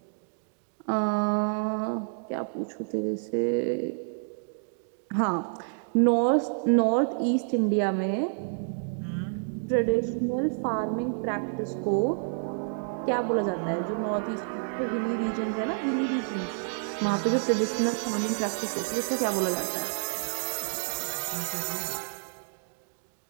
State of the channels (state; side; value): silent; left; digital silence